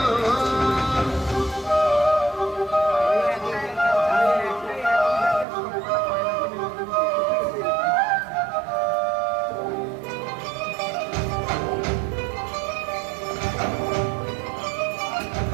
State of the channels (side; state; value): left; drops out; at 5.5 s